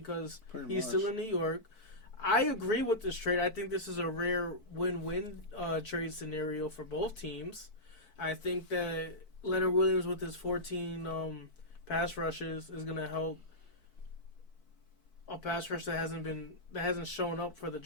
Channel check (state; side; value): late; right; 4.6 ms